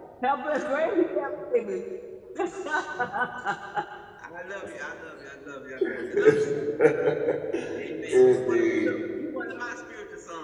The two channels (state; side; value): identical; both; correlation 1.00